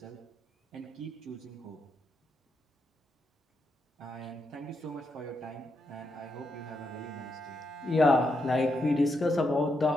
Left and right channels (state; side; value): normal; both; correlation 0.82